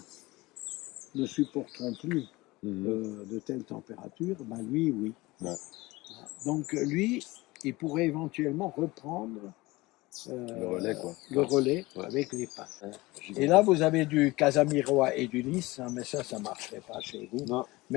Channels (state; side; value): quieter; right; 21.1 dB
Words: ne supporteront plus de telles températures, ben lui, oui. Ouais. Donc lui, il pourrait éventuellement reprendre Le relais, quoi. le relais Ouais. avec les pins. Et là, vous avez du Casamirois et du lys, hein, mais ça ne marcherait pas chez vous. Non.